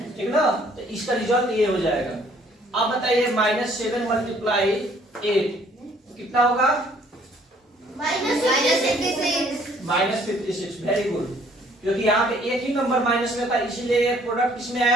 ठीक ना? तो इसका रिजल्ट ये हो जाएगा। अब बताइए -7 मल्टीप्लाई 8 कितना होगा? -56। वेरी गुड, क्योंकि यहाँ पे एक ही नंबर माइनस में था, इसीलिए ये प्रोडक्ट किसमें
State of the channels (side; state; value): both; normal; correlation 0.61